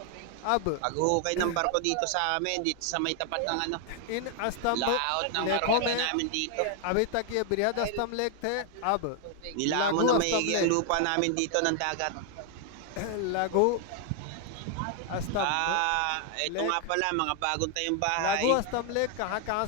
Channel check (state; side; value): different; both; correlation 0.00